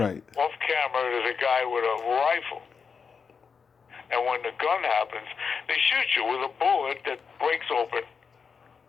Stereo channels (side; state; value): right; quieter; 5.8 dB